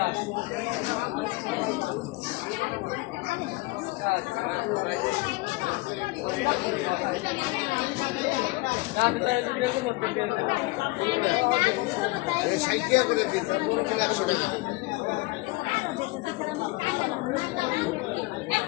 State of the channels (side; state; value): right; quieter; 22.3 dB